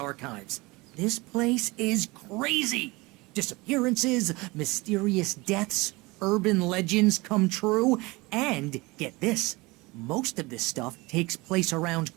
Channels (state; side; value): quieter; left; 23.4 dB